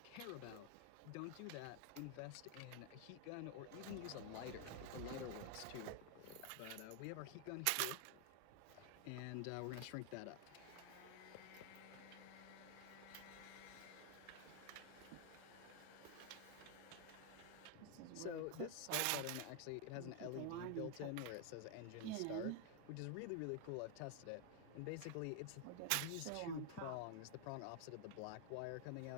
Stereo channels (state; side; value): different; both; correlation 0.00